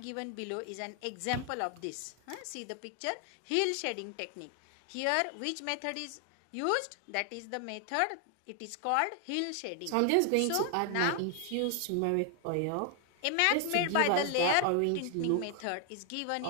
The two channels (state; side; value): different; both; correlation 0.00